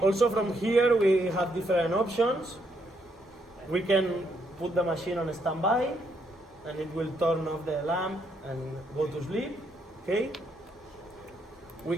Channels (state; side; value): normal; both; correlation 0.75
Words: from here we have different options. We can put the machine on standby and it will turn off the lamp and go to sleep. Okay. We